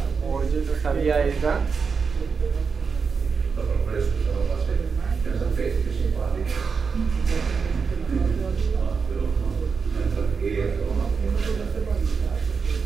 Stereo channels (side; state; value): left; quieter; 5.4 dB